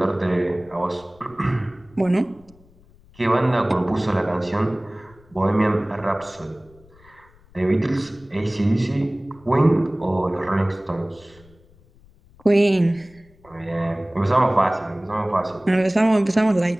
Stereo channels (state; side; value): noise; left; rumble, 28 dB below the sound